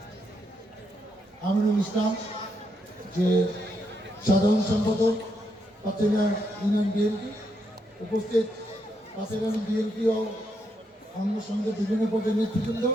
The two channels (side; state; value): both; normal; correlation 0.79